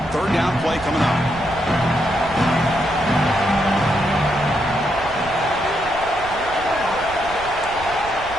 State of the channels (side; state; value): right; noise; rumble, 15 dB below the sound